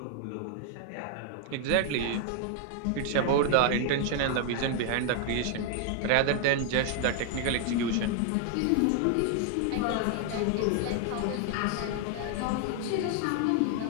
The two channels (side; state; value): both; different; correlation 0.00